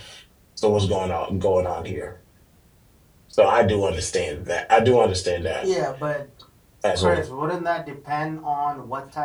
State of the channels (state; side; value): identical; both; correlation 1.00